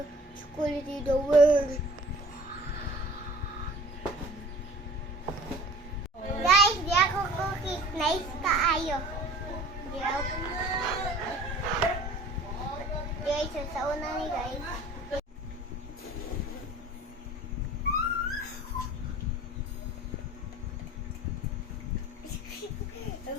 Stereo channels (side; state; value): both; normal; correlation 0.47